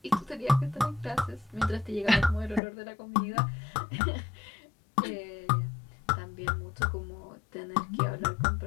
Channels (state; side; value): drops out; right; at 2.6 s